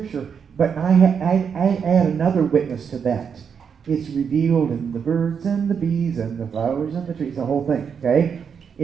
But I add another witness to that. It's revealed in the birds and the bees and the flowers and the trees, the whole thing, okay?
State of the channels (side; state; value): left; quieter; 6.8 dB